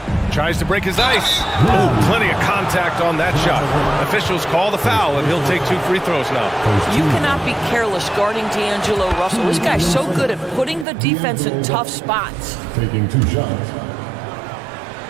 Tries to break his ice. Oh, plenty of contact on that shot. Officials call the foul, and he'll take 2 free throws now. You cannot be careless guarding D'Angelo Russell. This guy's so good at putting the defense in tough spots. Taking 2 shots.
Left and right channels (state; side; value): drops out; left; at 10.9 s